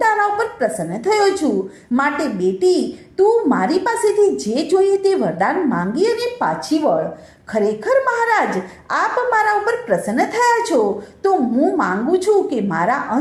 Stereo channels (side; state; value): both; identical; correlation 1.00